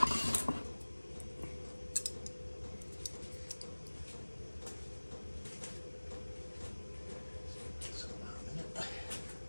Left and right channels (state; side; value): inverted; both; correlation -1.00